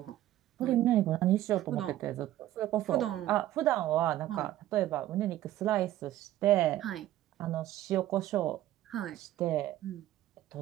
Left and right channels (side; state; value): left; quieter; 13.9 dB